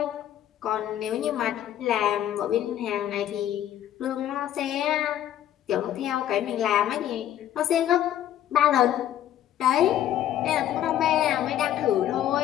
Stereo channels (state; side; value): quieter; right; 11.5 dB